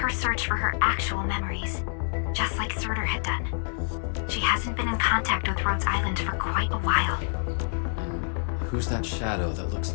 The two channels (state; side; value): silent; right; digital silence